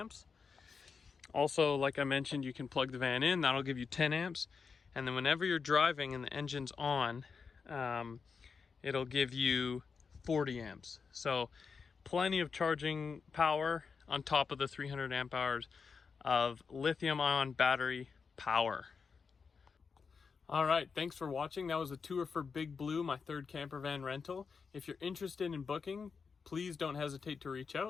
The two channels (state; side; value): quieter; right; 5.4 dB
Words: Also, like I mentioned, you can plug the van in, that'll give you 10 amps. And then whenever you're driving and the engine's on, it'll give you 40 amps. So plenty of charging power on top of the 300 amp hours of lithium-ion battery power. All right, thanks for watching. That was a tour for Big Blue, my 3rd camper van rental. If you're interested in booking, please don't hesitate to reach